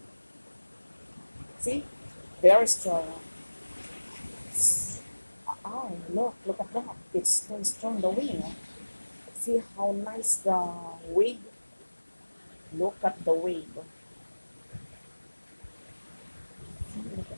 see, very strong. Oh, look at that. It's very strong, the wind. See how nice the wave. Look at the wave. Look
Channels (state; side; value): inverted; both; correlation -1.00